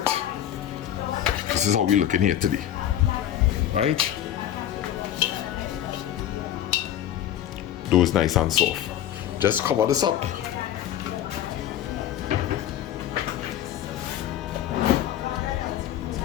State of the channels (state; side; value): quieter; right; 11.3 dB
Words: This is how we're looking here today. Right? Dough is nice and soft. Just cover this up.